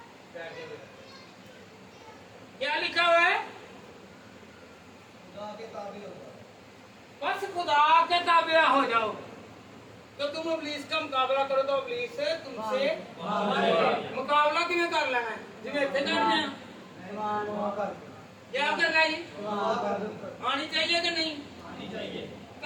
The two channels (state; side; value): identical; both; correlation 1.00